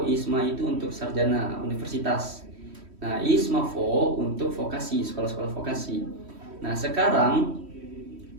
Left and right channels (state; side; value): late; left; 3.1 ms